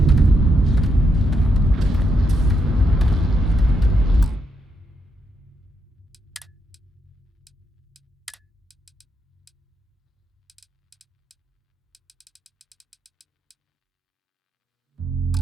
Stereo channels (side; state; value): both; normal; correlation 0.79